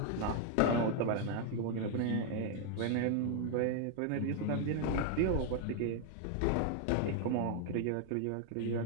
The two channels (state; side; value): different; both; correlation 0.00